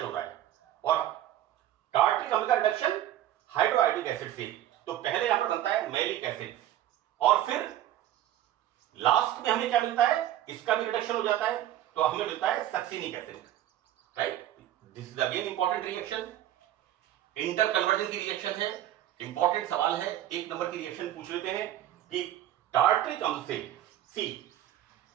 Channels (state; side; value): quieter; left; 12.7 dB